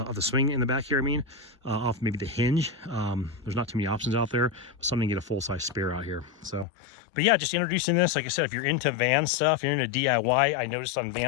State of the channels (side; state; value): right; drops out; at 6.7 s